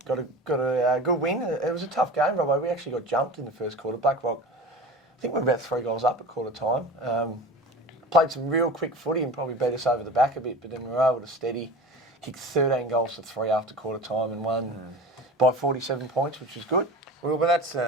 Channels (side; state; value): both; normal; correlation 0.35